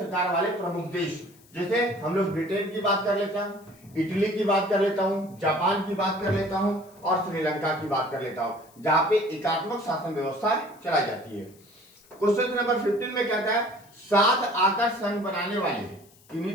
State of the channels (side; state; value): left; noise; hiss, 28 dB below the sound